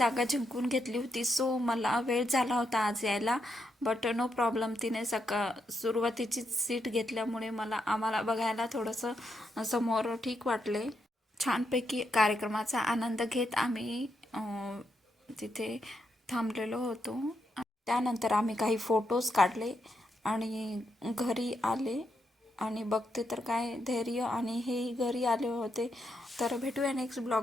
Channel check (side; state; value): both; normal; correlation 0.81